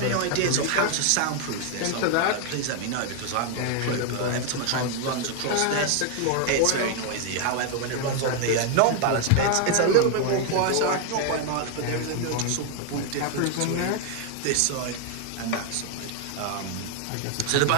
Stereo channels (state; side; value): different; both; correlation 0.00